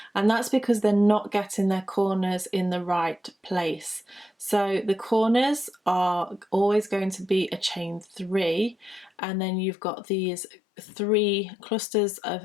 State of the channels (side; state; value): right; drops out; at 9.1 s